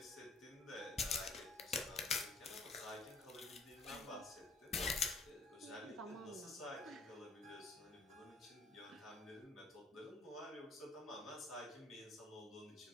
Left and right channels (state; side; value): quieter; right; 3.3 dB